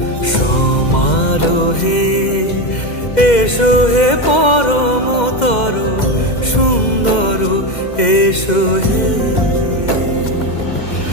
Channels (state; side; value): late; right; 2.1 ms